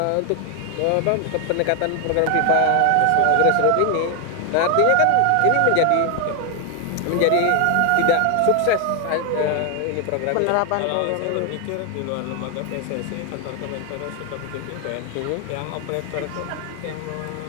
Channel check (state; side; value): different; both; correlation 0.00